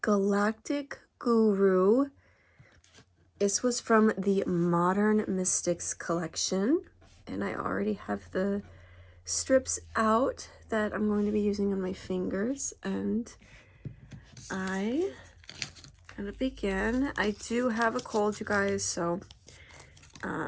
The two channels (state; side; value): identical; both; correlation 1.00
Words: Galactic Guru. This was from the Modern Mystics collection, and I already have the strips out that I'm going to be using on my fingers, and I'm gonna begin. I do have a cold, you guys, so